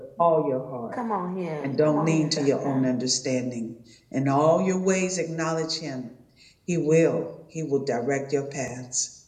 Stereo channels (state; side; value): identical; both; correlation 1.00